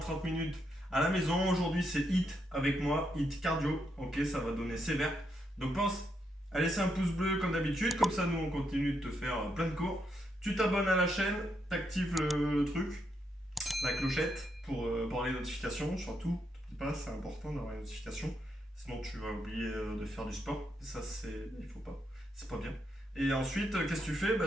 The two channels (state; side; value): normal; both; correlation 0.79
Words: minutes à la maison. Aujourd'hui c'est HIIT avec moi, HIIT cardio, ok, ça va donner sévère. Donc pense à laisser un pouce bleu comme d'habitude, comme ça nous on continue de te faire plein de cours. Tu t'abonnes à la chaîne, t'actives le truc, la clochette pour avoir les notifications, surtout, n'oublie pas, c'est important d'avoir les notifications, sinon tu vas oublier de faire du sport, ça il faut pas, c'est pas bien. Et ensuite, qu'est-ce que tu fais?